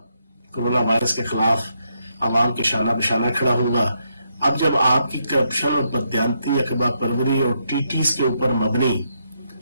कोरोना वायरस के खिलाफ आवाम के शाना बशाना खड़ा होगा। अब जब आपकी करप्शन और बदयांती अखबार परवरी और टीटीस के ऊपर मबनी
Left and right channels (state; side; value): inverted; both; correlation -0.79